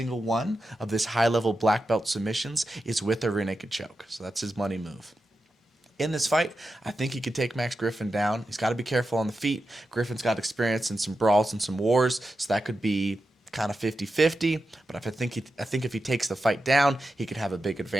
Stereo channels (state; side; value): normal; both; correlation 0.90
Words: one of this high-level black belt submissions is with a rear naked choke, so that's his money move. In this fight, I think he could take Max Griffin down. He's got to be careful on the feet. Griffin's got experience in some brawls and some wars, so that could be kind of 50-50, but I think if he takes the fight down, he could have a big